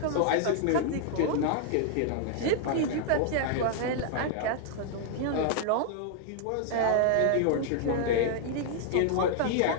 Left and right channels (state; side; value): different; both; correlation 0.00